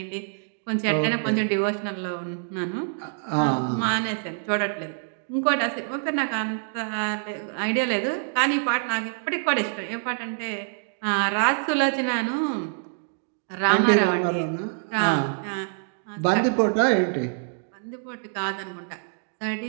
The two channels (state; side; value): silent; left; digital silence